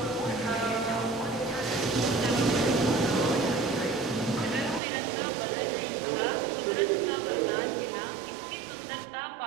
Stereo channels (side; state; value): left; drops out; at 4.8 s